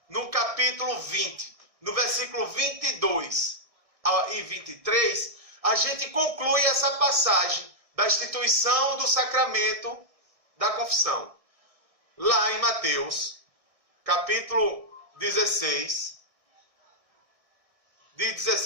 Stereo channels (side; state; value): left; late; 1.6 ms